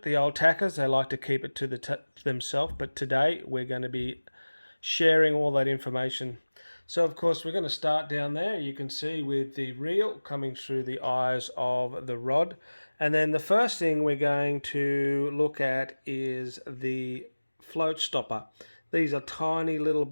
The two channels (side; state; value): both; inverted; correlation -1.00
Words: The old tackers, they like to keep it to themselves, but today we're going to be sharing all that information. So, of course, we're going to start down there. You can see with the reel coming through the eyes of the rod. And then the first thing we're going to look at is the float stopper. These are tiny little